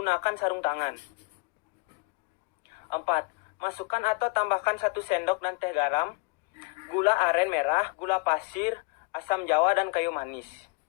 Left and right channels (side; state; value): right; quieter; 29.8 dB